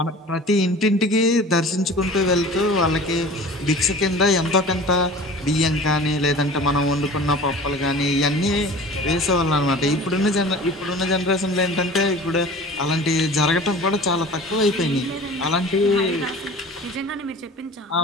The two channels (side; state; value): both; normal; correlation 0.40